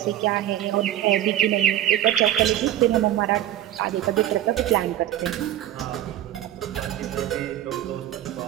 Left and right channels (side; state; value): left; quieter; 12.2 dB